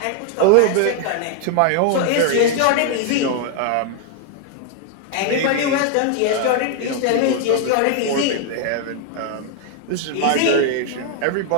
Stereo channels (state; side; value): different; both; correlation 0.00